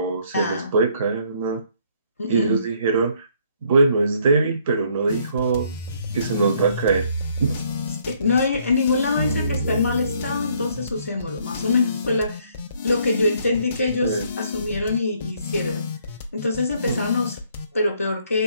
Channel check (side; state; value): both; inverted; correlation -0.66